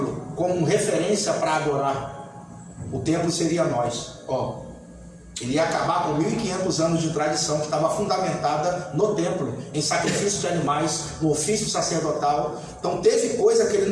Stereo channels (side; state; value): both; identical; correlation 1.00